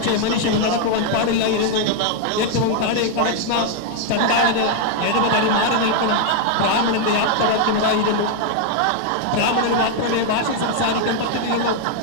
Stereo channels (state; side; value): different; both; correlation 0.00